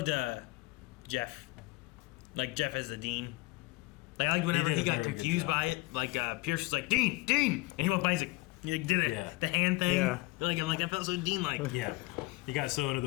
Jeff. Like Jeff as the dean. Like I liked whenever did he a got very good confused job. by it. Like Pierce was like, Dean! And he went by, he's like, he did it. Yeah. The hand thing. Yeah. Like I felt so Dean-like. Yeah, he got so into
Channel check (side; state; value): right; quieter; 22.3 dB